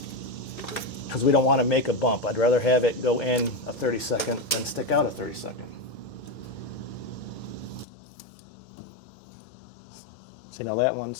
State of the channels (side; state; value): right; drops out; at 7.9 s